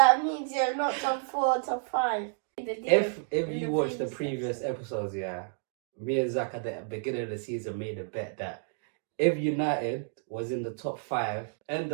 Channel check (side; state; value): left; silent; digital silence